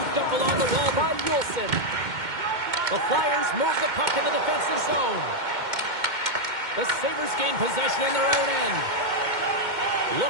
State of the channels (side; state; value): left; late; 2.1 ms